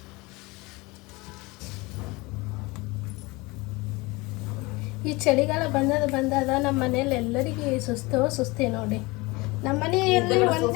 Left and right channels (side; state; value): right; quieter; 23.8 dB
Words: ಈ ಚಳಿಗಾಲ ಬಂದಾಗ ನಮ್ಮ ಮನೇಲಿ ಎಲ್ಲರಿಗೂ ಸುಸ್ತಿ ನೋಡಿ. ನಮ್ಮ ಮನೆಯಲ್ಲಿ